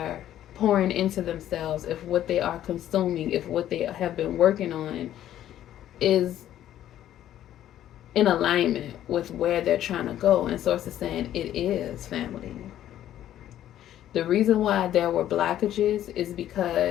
pouring into themselves, if what they are consuming, if what they have been working on is in alignment with where they're trying to go. And Source is saying it is, family. The reason why there were blockages is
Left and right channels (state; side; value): quieter; right; 12.0 dB